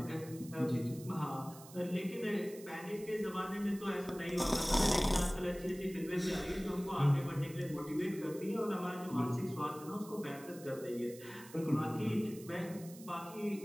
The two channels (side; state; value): right; noise; hiss, 18 dB below the sound